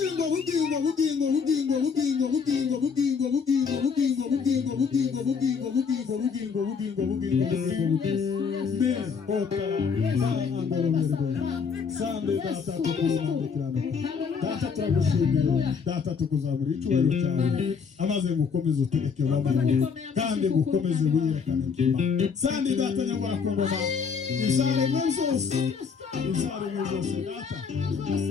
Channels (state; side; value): quieter; right; 5.9 dB